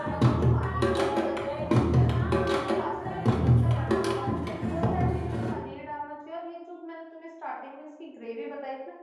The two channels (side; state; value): both; identical; correlation 1.00